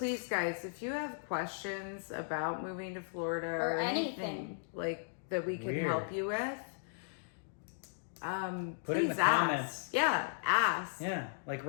guys, if you have questions about moving to Florida or anything like that we can help you with, put it in the comments. Yeah, ask. Yeah, like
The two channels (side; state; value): right; silent; digital silence